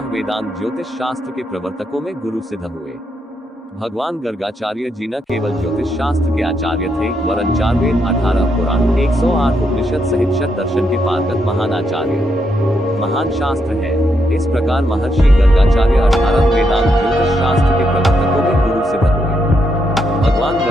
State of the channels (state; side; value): normal; both; correlation 0.79